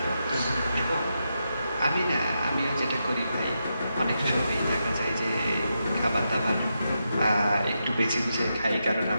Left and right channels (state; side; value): inverted; both; correlation -0.85